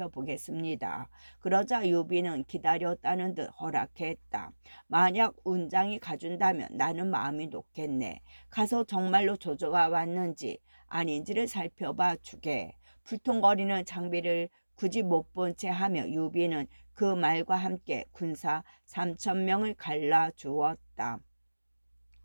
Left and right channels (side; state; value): both; inverted; correlation -1.00